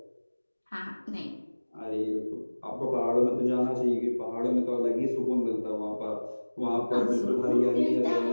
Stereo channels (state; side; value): inverted; both; correlation -1.00